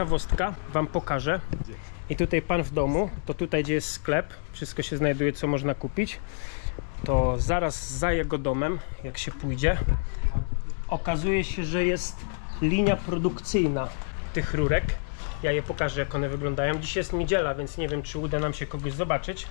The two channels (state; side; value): silent; right; digital silence